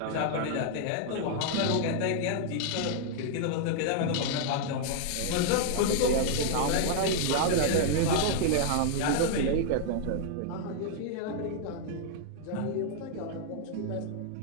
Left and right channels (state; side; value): different; both; correlation 0.00